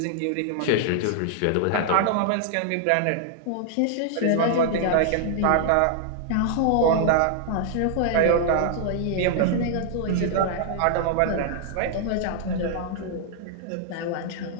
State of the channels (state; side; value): different; both; correlation -0.01